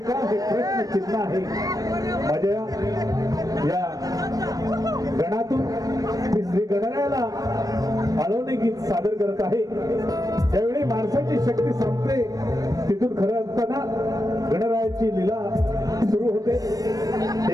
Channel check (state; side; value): late; left; 0.18 ms